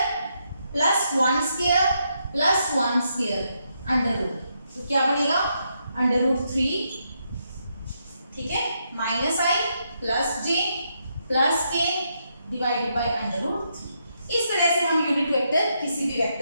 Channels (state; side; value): inverted; both; correlation -0.79